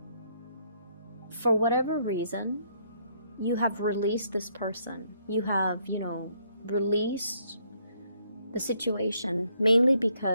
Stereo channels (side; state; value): both; inverted; correlation -0.70